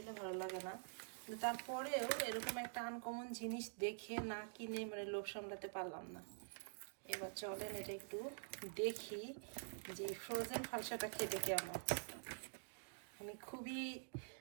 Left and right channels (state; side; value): silent; left; digital silence